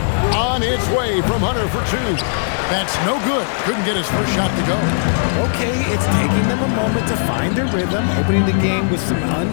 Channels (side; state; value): right; silent; digital silence